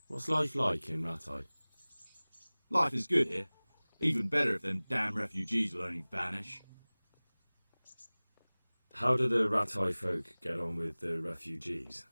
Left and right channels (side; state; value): both; inverted; correlation -1.00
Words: What's life like in Rattay? Life is good here. Even better if them damn refugees will only vanish. How do the Rattay folk get on with the refugees?